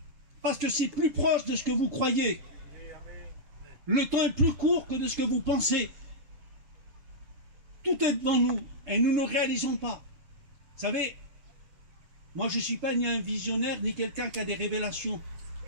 Parce que c'est plus proche de ce que vous croyez. Le temps est plus court que de ce que vous pensez. Tout est devant nous et nous ne réalisons pas. Vous savez, Moi, je ne suis pas ni un visionnaire, ni quelqu'un qui a des révélations.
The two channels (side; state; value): left; late; 7.5 ms